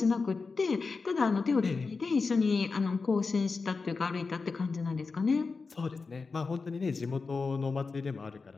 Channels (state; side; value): quieter; right; 4.4 dB